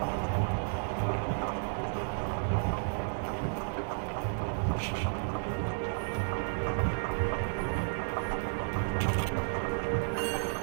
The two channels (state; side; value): silent; left; digital silence